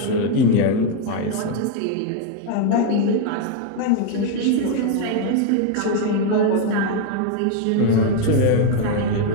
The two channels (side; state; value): both; different; correlation 0.01